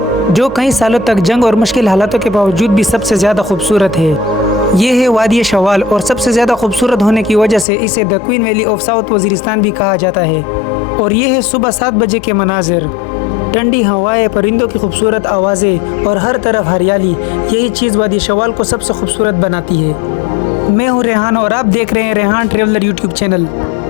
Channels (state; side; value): drops out; right; at 7.7 s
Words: जो कई सालों तक जंग और मुश्किल हालातों के बावजूद भी सबसे ज़्यादा खूबसूरत है। ये है वादी शवाल और सबसे ज़्यादा खूबसूरत होने की वजह से इसे the queen valley of south Waziristan भी कहा जाता है। और ये है सुबह 7 बजे के मनाजिर, ठंडी हवाएं, परिंदों की खूबसूरत आवाज़ें और हर तरफ हरियाली। यही चीज़ वादी शवाल को सबसे खूबसूरत बनाती है। मैं हूँ रेहान और आप देख रहे हैं रेहान ट्रेवलर यूट्यूब चैनल।